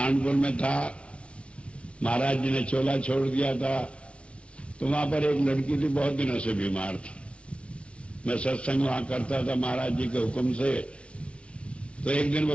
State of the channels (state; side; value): late; right; 0.060 ms